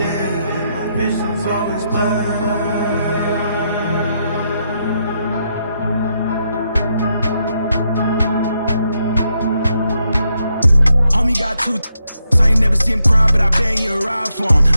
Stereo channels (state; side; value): inverted; both; correlation -0.80